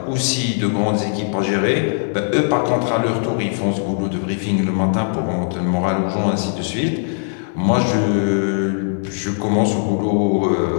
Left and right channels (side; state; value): right; silent; 60 dB below the other